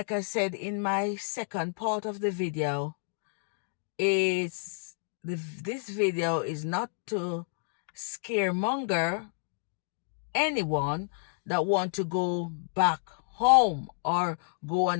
I said in my second part of the video, this video is not to scaremonger anyone that want to go back home or go on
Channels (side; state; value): right; silent; digital silence